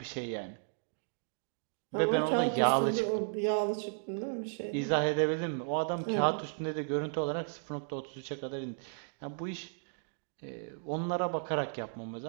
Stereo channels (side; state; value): left; silent; digital silence